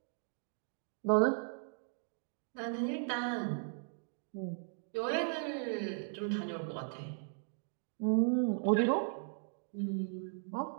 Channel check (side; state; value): left; silent; digital silence